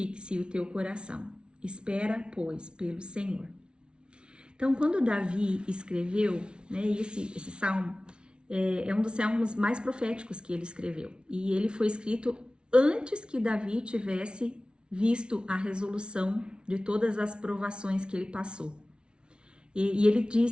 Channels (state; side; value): late; left; 0.056 ms